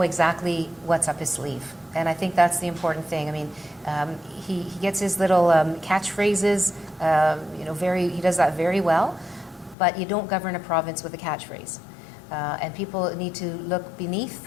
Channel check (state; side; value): drops out; right; at 9.8 s